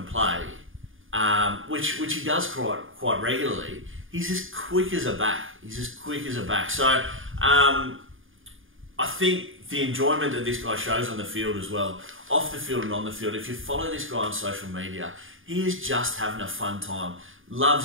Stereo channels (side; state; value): left; late; 0.58 ms